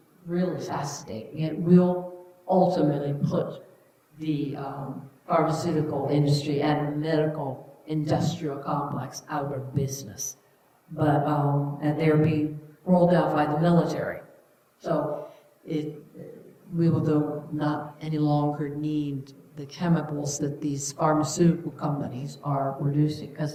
really fascinating. It will ultimately put the pharmaceutical industry and medical industrial complex out of business. But, and they're being rolled out by the military. So we will not any longer need the chemicals that these pharmaceutical companies are producing.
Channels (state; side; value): identical; both; correlation 1.00